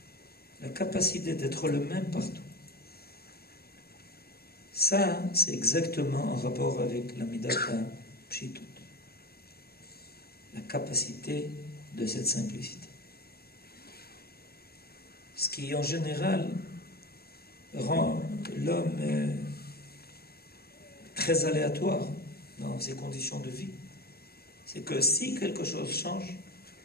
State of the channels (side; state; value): right; late; 0.45 ms